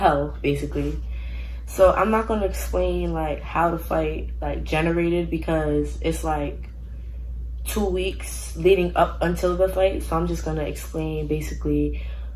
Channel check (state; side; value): identical; both; correlation 1.00